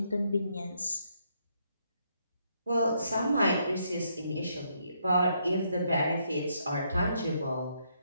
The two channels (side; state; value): both; inverted; correlation -0.75